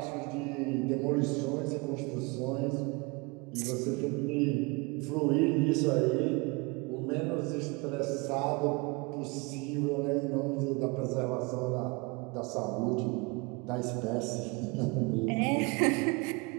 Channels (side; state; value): left; quieter; 27.8 dB